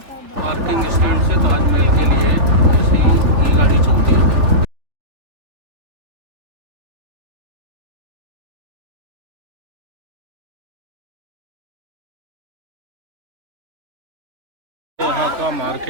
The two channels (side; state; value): left; late; 3.6 ms